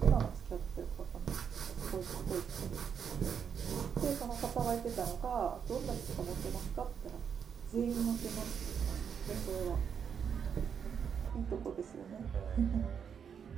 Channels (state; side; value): quieter; left; 7.3 dB